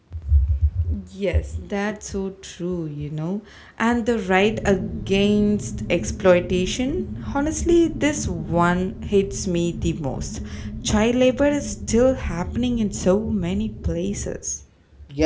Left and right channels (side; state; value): both; identical; correlation 1.00